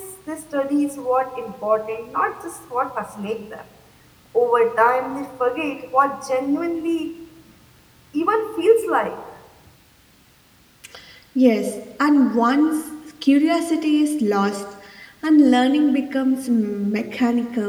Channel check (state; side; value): identical; both; correlation 1.00